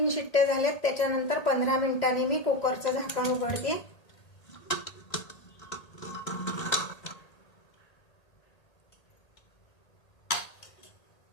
शिट्ट्या झाल्यात. त्याच्यानंतर 15 मिनिटांनी मी कुकरचं झाकण उघडते.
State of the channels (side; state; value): right; late; 1.8 ms